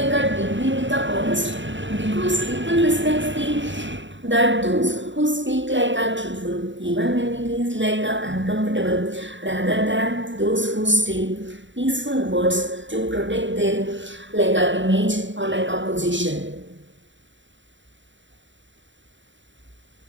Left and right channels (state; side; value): late; left; 0.54 ms